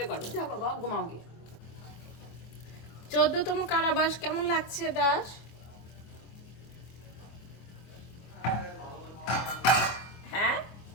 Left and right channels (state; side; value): late; right; 24 ms